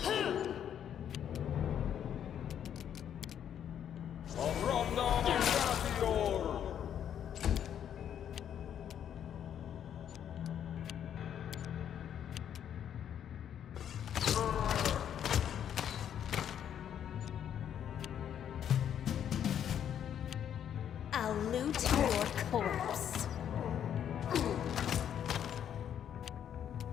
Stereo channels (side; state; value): right; quieter; 9.4 dB